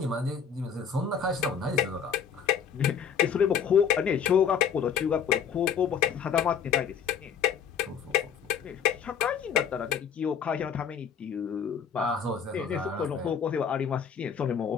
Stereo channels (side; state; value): right; quieter; 7.2 dB